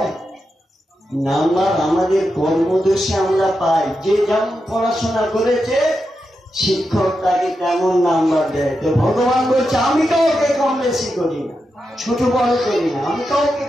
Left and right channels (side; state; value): both; normal; correlation 0.87